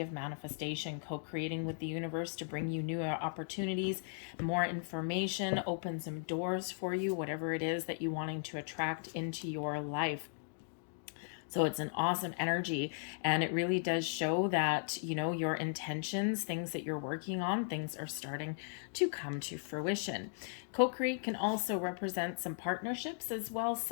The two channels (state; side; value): silent; right; digital silence